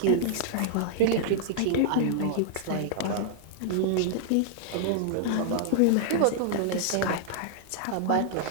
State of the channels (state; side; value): different; both; correlation -0.01